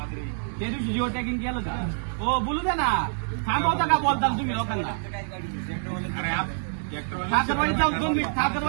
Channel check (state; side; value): silent; left; digital silence